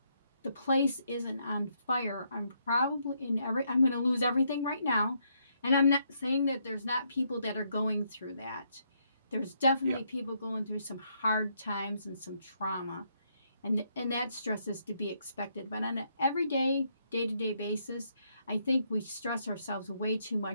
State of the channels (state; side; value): inverted; both; correlation -0.74